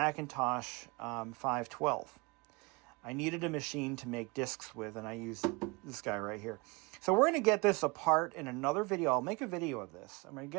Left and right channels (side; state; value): left; quieter; 27.1 dB